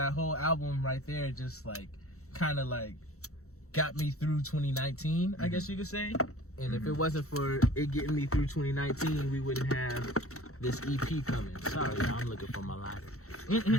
whole album right there just like kind of like got me through 2019, I guess you could say. And if it wasn't for it getting me through 2019, we wouldn't have this EP coming. Sorry, y'all, I'm looking for my lighter.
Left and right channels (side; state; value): right; late; 0.64 ms